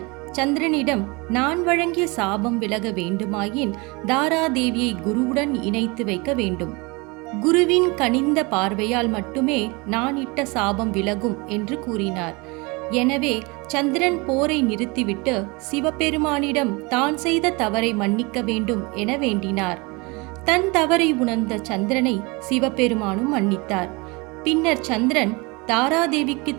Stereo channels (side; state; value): left; quieter; 26.9 dB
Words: சந்திரனிடம், நான் வழங்கிய சாபம் விலக வேண்டுமாயின் தாராதேவியை குருவுடன் இணைத்து வைக்க வேண்டும். குருவின் கனிந்த பார்வையால் மட்டுமே நான் இட்ட சாபம் விலகும் என்று கூறினார். எனவே சந்திரன் போரை நிறுத்திவிட்டு சிவபெருமானிடம் தான் செய்த தவறை மன்னிக்க வேண்டும் என வேண்டினார். தன் தவறை உணர்ந்த சந்திரனை சிவபெருமானும் மன்னித்தார். பின்னர் சந்திரன் தாராதேவிக்கு